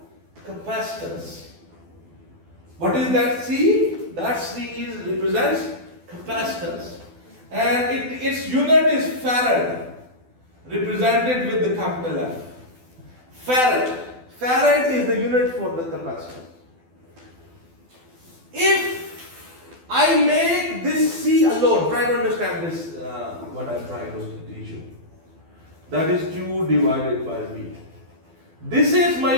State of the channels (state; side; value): late; left; 12 ms